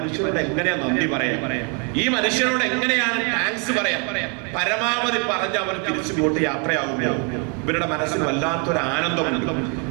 എങ്ങനെയാ നന്ദി പറയാ? ഈ മനുഷ്യരോട് എങ്ങനെയാണ് താങ്ക്സ് പറയാ? പരമാവധി പറഞ്ഞ് അവർ തിരിച്ചുപോട്ട് യാത്രയാകുമ്പോൾ ഇവരുടെ മനസ്സിൽ വല്ലാത്തൊരു ആനന്ദമുണ്ട്.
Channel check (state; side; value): quieter; left; 36.6 dB